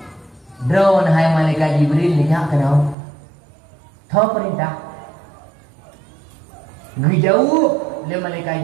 drone hai malaikat Jibril ni nak kenal. Tahu perintah. Ngejauh le malaikat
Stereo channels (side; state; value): left; drops out; at 3.0 s